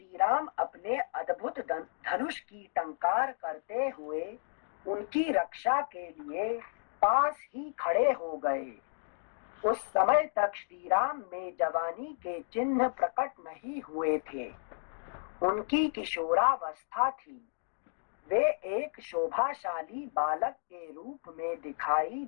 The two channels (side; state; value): right; silent; digital silence